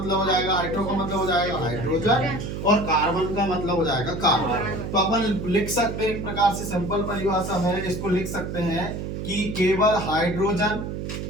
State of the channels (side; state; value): right; noise; hum, 5 dB below the sound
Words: हो जाएगा, हाइड्रो का मतलब हो जाएगा हाइड्रोजन, और कार्बन का मतलब हो जाएगा कार्बन। तो अपन लिख सकते हैं एक प्रकार से सिंपल परिभाषा में इसको लिख सकते हैं कि केवल हाइड्रोजन